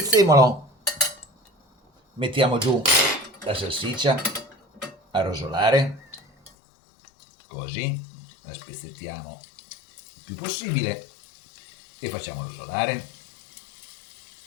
mettiamo giù la salsiccia a rosolare, così la spezzettiamo il più possibile e facciamo rosolare.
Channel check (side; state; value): right; drops out; at 6.5 s